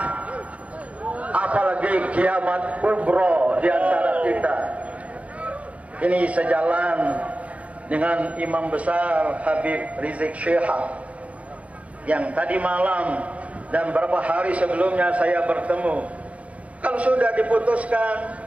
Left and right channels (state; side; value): late; left; 0.066 ms